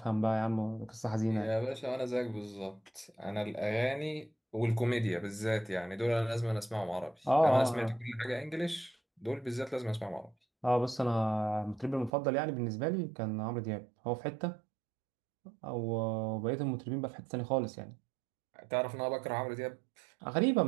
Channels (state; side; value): drops out; left; at 12.1 s